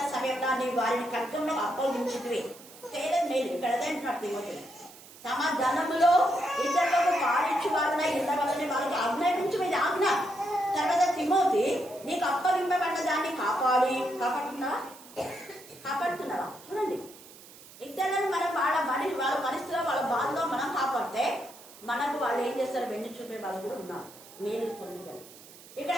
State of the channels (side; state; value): right; noise; hiss, 20 dB below the sound